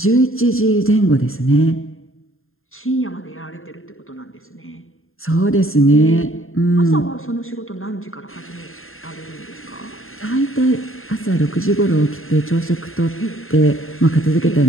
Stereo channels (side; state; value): right; late; 0.61 ms